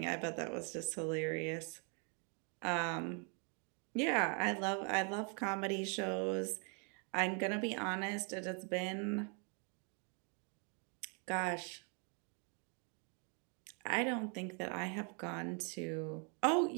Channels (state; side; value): quieter; left; 38.1 dB